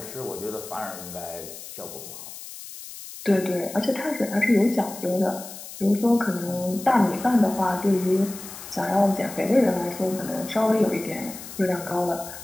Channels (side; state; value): left; noise; hiss, 13 dB below the sound